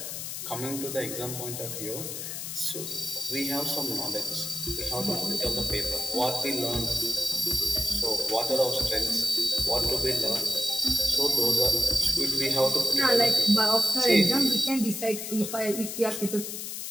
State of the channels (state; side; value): noise; left; hiss, 6 dB below the sound